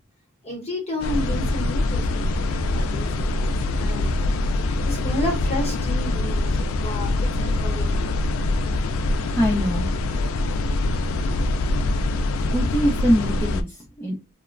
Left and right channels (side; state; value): both; normal; correlation 0.79